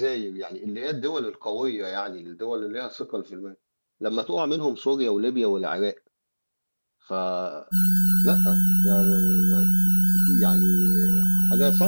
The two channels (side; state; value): both; inverted; correlation -1.00